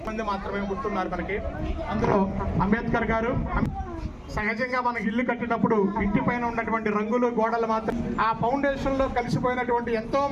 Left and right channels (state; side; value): identical; both; correlation 1.00